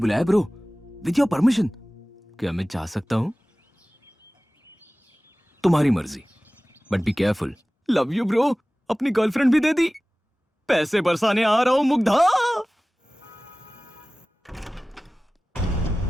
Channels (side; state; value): both; normal; correlation 0.98